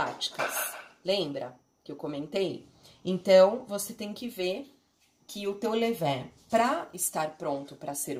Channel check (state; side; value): identical; both; correlation 1.00